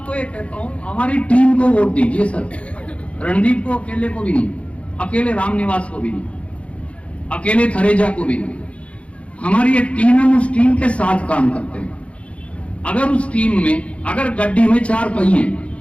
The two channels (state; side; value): late; right; 0.062 ms